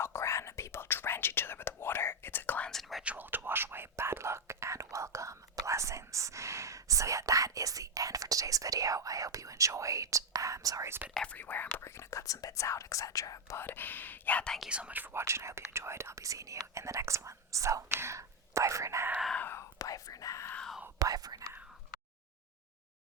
people drench each other with water. It's a cleansing ritual to wash away bad luck and welcome blessings. So yeah, that is the end for today's video. I hope you enjoyed. Sorry it's a bit everywhere. I'm probably going to cut some bits out, etc. But yeah, thank you so much for watching. I hope you enjoyed. I'll be seeing you in the next one. So, bye for now. Bye for now. Bye for now.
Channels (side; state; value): both; normal; correlation 0.03